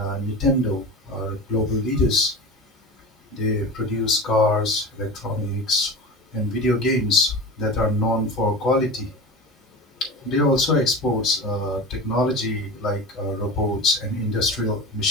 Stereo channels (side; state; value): both; normal; correlation 0.31